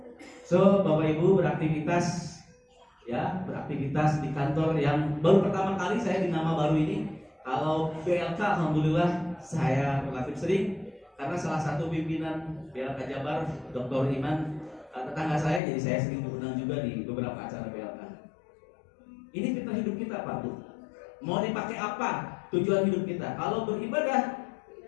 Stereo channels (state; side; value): drops out; right; at 15.6 s